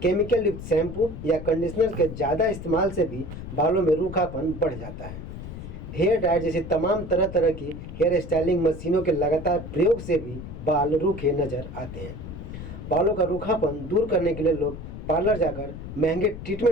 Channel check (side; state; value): left; noise; rumble, 10 dB below the sound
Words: केमिकल युक्त शैम्पू या कंडीशनर के ज़्यादा इस्तेमाल से भी बालों में रूखापन बढ़ जाता है। हेयर ड्रायर जैसी तमाम तरह तरह की हेयर स्टाइलिंग मशीनों के लगातार प्रयोग से भी बाल रूखे नजर आते हैं। बालों का रूखापन दूर करने के लिए लोग पार्लर जाकर महंगे